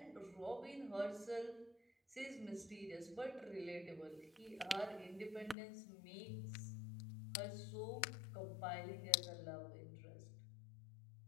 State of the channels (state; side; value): drops out; right; at 5.6 s